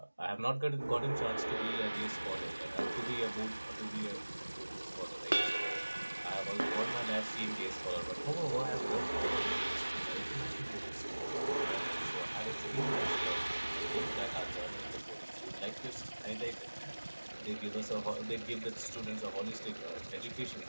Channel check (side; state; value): both; inverted; correlation -1.00